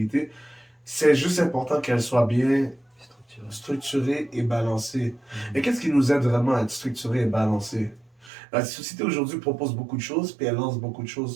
C'est juste important qu'elle soit bien structurée et balancée. Et qu'est-ce qui nous aide vraiment à être structuré et balancé? La société aujourd'hui propose beaucoup de choses, puis elle lance beaucoup de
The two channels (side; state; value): left; drops out; at 8.3 s